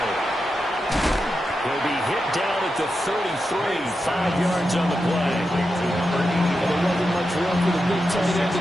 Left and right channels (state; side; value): normal; both; correlation 0.88